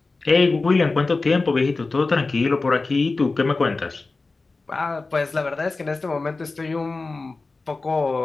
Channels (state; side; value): quieter; right; 3.7 dB